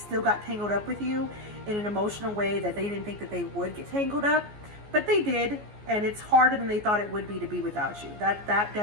got tangled up with you in an emotional way that they didn't think that they would get tangled up, but they did. And it's harder than they thought it would be with you. That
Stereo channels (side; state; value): left; late; 14 ms